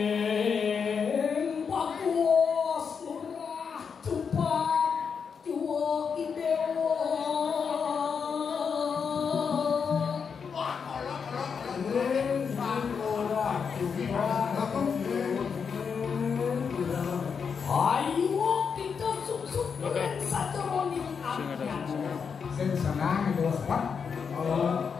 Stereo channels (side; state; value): right; quieter; 6.2 dB